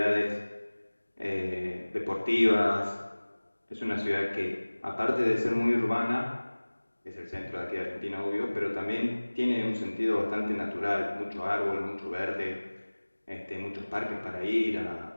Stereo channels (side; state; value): both; inverted; correlation -1.00